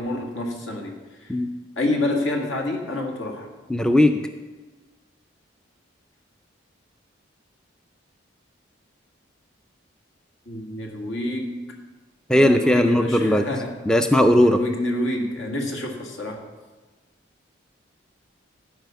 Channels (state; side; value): normal; both; correlation 0.83